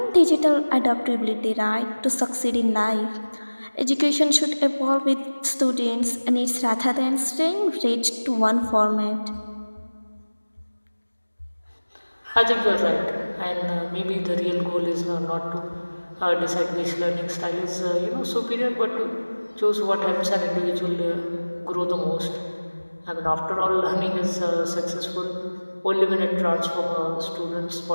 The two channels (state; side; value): inverted; both; correlation -1.00